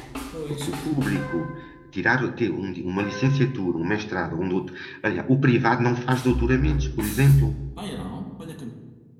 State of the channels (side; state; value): both; identical; correlation 1.00